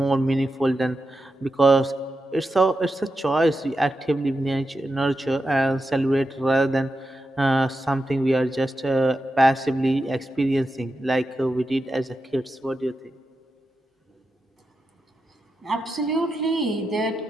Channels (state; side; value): normal; both; correlation 0.88